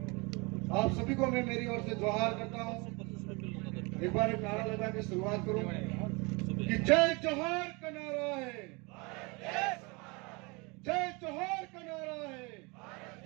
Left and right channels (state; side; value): quieter; left; 28.1 dB